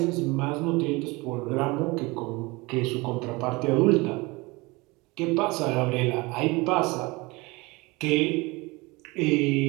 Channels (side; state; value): left; quieter; 24.3 dB